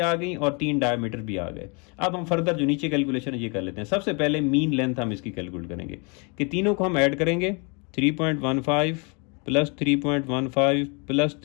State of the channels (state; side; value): quieter; right; 33.1 dB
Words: गई और 3 डायमीटर भी आ गए। अब हम फर्दर जो नीचे कैलकुलेशन ये कर लेते हैं। सबसे पहले मीन लेंथ हम इसकी कैलकुलेट करेंगे कि तीनों को हम ऐड करेंगे, 3.15 प्लस 3.15 प्लस